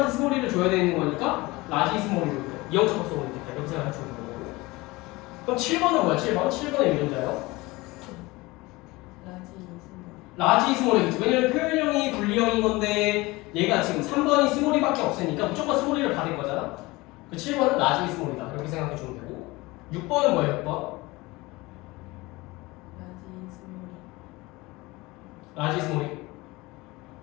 스몰이를 줘야 되는 거니까 라지 스몰이로 이형 접합성으로 있겠다. 이렇게 생각하시면 되는 거고. 그럼 7번은 뭐야? 7번의 유전자요? 라지 스몰이겠지. 왜냐면 표현형이 분리형인 건데 얘가 지금 3번이 스몰이밖에 없으니까 무조건 스몰이를 받을 거잖아. 그 7번은 라지 스몰이다. 이렇게 생각해 주면 되고 6번은 뭐예요? 6번? 라지 스몰이?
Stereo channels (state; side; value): quieter; right; 21.9 dB